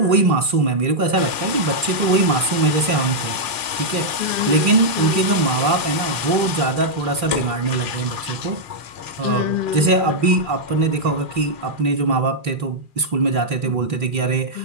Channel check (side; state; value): left; late; 2.4 ms